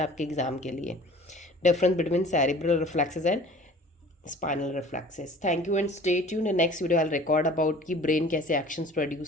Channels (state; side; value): normal; both; correlation 0.46